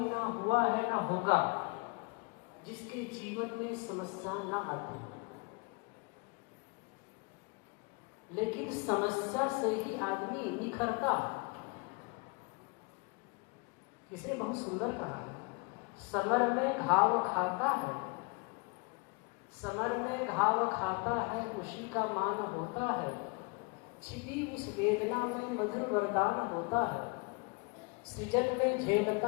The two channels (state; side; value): quieter; right; 30.3 dB